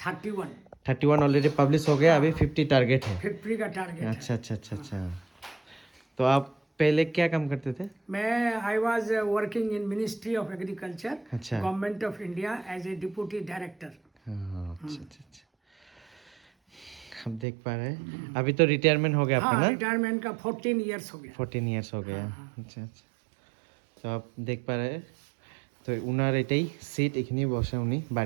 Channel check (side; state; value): left; drops out; at 17.4 s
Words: 31 ऑलरेडी पब्लिश हो गया, अभी 50 टारगेट है। 50 का टारगेट। अच्छा अच्छा अच्छा अच्छा। तो आप पहले क्या काम करते थे? मैं I was working in ministry of agriculture, अच्छा। Government of India as a deputy director. हाँ, अच्छा अच्छा अच्छा। अब देख पा रहे हैं, अभी तो रिटायरमेंट हो गया आपका हाँ, ना? रिटायरमेंट का 14 इयर्स हो गया। 14 ইয়ার্স हो गया। अच्छा अच्छा। তো आप देख पा रहे हैं, তো উনার এটাই সিট, এখানেই বসে উনি